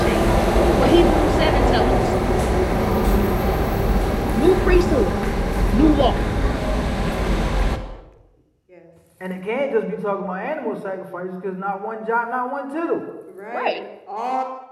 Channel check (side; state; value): both; identical; correlation 1.00